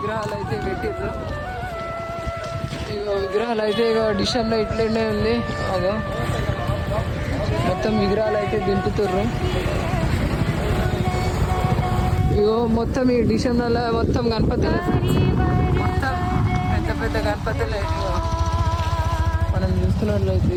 అయితే పెట్టిర్రు. ఇగో విగ్రహాలు అయితే ఇక డిషన్లో ఇట్లనే ఉంది. అదో మొత్తం విగ్రహాలు అయితే దింపుతుర్రు. ఇగో మొత్తం ఈ డిషన్ల మొత్తం గణపతులు, మొత్తం పెద్ద పెద్ద గణపతులు అయితే మనం చూస్తున్నట్లయితే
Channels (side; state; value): both; identical; correlation 1.00